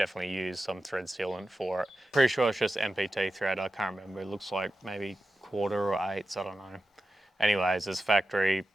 used some thread sealant for it. Pretty sure it's just MPT thread. I can't remember. It looks like maybe 1/4 or 1/8, I don't know. Anyways, this factory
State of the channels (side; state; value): both; normal; correlation 0.92